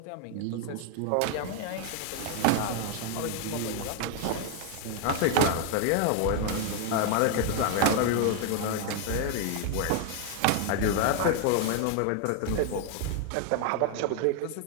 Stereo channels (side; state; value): both; different; correlation 0.00